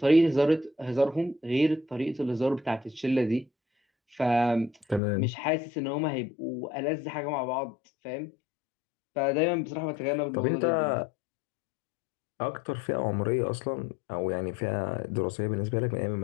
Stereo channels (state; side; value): drops out; right; at 5.0 s